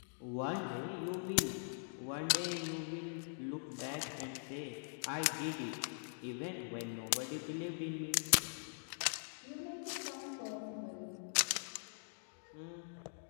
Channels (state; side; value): silent; right; digital silence